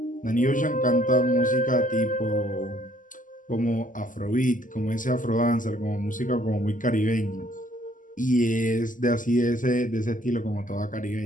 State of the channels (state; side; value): late; right; 0.38 ms